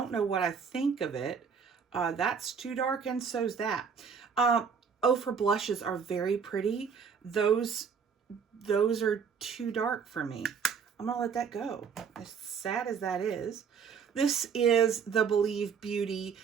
know what I think of it. That's too dark, and so's that. Ofra blushes are very pretty. Those are too dark for me. I'm gonna let that go, as sad as that is. This is the Believe Beauty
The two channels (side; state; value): left; quieter; 6.4 dB